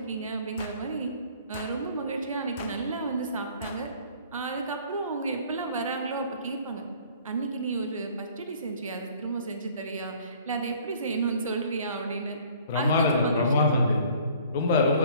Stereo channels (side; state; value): both; inverted; correlation -0.53